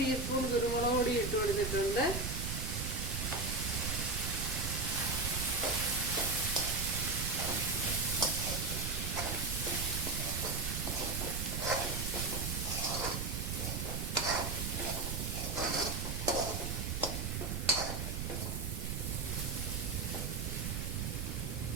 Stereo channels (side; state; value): right; noise; rumble, 2 dB below the sound